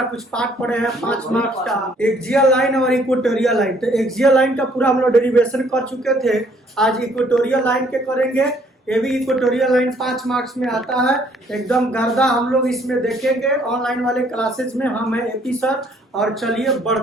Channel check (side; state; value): both; normal; correlation 0.63